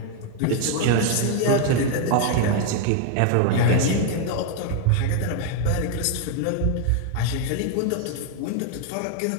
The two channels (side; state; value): both; different; correlation 0.01